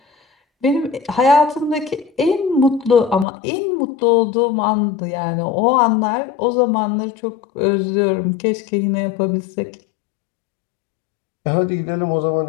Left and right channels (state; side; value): drops out; right; at 3.2 s